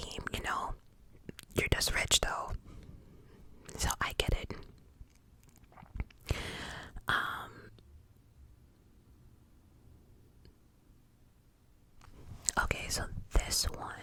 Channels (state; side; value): identical; both; correlation 1.00